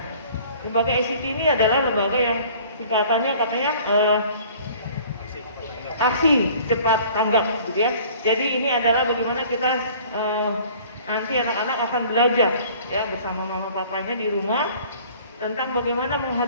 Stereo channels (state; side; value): inverted; both; correlation -0.51